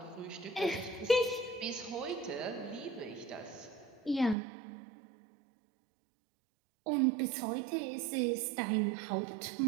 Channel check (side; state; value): left; drops out; at 4.4 s